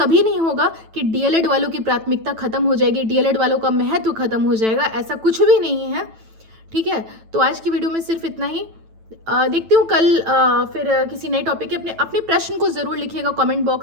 नहीं होगा कि डीएलएड वालों की प्राथमिकता खत्म हो जाएगी, डीएलएड वालों का महत्व खत्म हो जाएगा, ऐसा कुछ भी नहीं है, ठीक है। तो आज की वीडियो में सिर्फ इतना ही। देखती हूँ कल फिर किसी नए टॉपिक के। अपने प्रश्न को ज़रूर लिखिएगा कमेंट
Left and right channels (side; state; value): left; late; 9.1 ms